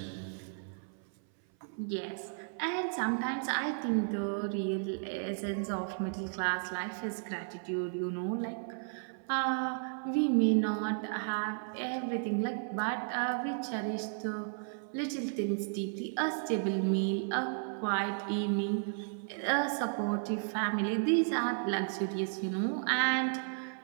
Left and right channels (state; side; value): silent; left; 55 dB below the other